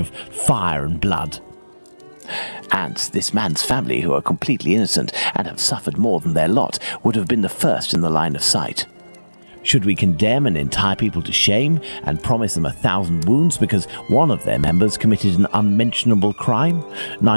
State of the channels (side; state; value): both; inverted; correlation -1.00